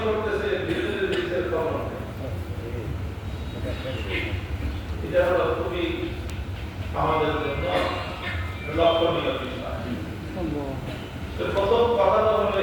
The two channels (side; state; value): both; identical; correlation 1.00